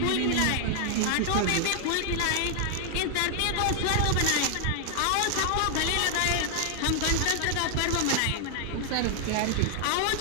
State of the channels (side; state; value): both; different; correlation 0.00